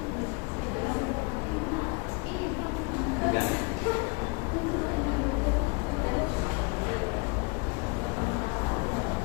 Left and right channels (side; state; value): right; quieter; 30.6 dB